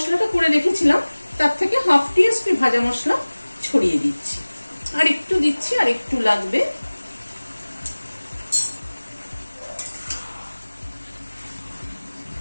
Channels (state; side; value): inverted; both; correlation -1.00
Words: করে রেখেছিলাম তার থেকে 1/2 টিএসপি ভাজা মশলা ছড়িয়ে দিচ্ছি। আর একটু দিচ্ছি, আর একটু লাগবে।